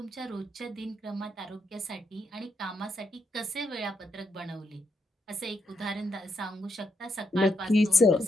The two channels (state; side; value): normal; both; correlation 0.79